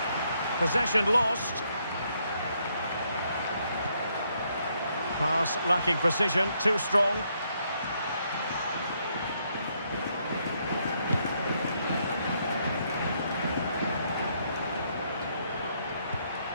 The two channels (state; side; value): inverted; both; correlation -0.74